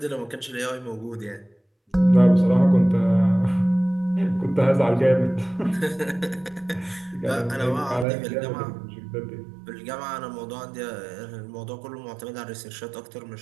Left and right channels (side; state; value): left; drops out; at 8.1 s